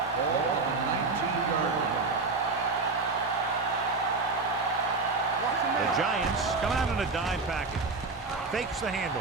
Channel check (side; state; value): left; quieter; 3.9 dB